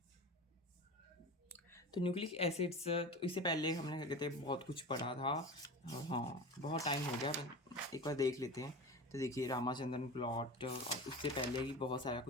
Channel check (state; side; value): normal; both; correlation 0.30